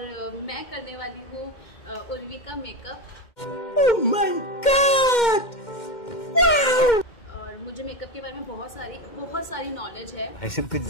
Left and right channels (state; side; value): late; right; 2.1 ms